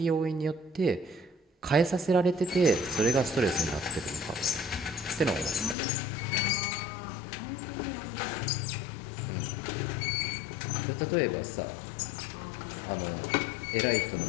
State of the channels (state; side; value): drops out; right; at 5.8 s